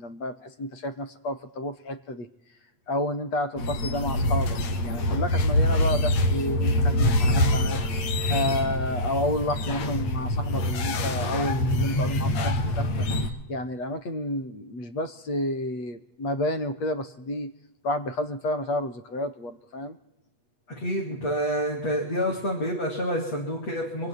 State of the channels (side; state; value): right; late; 8.3 ms